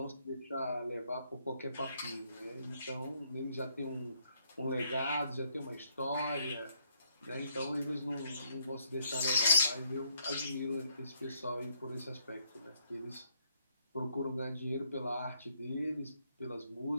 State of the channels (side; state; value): both; inverted; correlation -0.72